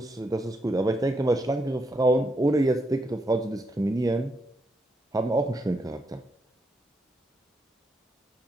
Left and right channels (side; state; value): both; normal; correlation 0.79